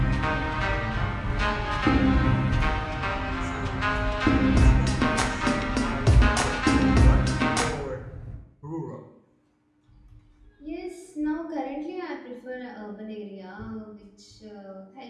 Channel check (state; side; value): identical; both; correlation 1.00